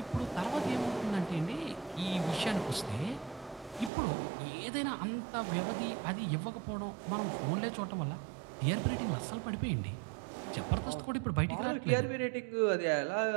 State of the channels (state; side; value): drops out; left; at 3.9 s